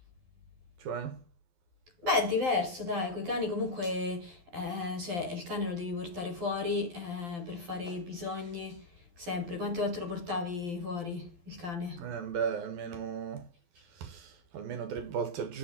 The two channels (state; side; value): late; left; 12 ms